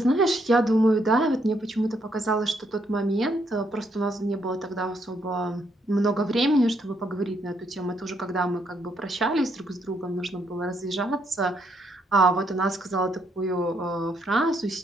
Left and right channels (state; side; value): normal; both; correlation 0.73